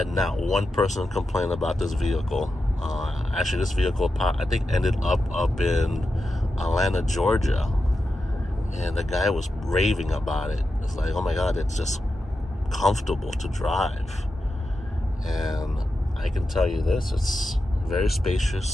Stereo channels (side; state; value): both; normal; correlation 0.90